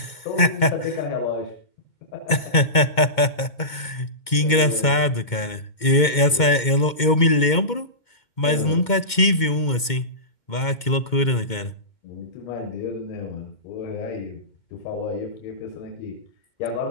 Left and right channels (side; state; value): right; late; 2.2 ms